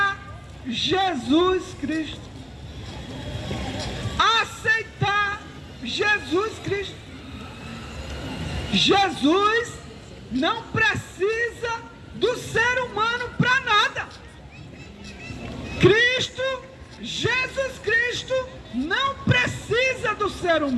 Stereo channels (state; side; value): identical; both; correlation 1.00